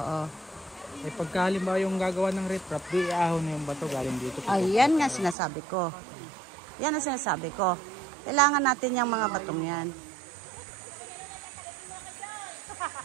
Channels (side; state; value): left; drops out; at 5.4 s